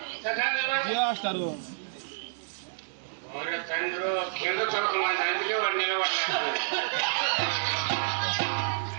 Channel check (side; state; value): left; silent; digital silence